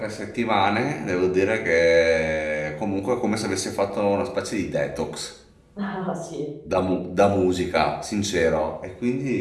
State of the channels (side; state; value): both; identical; correlation 1.00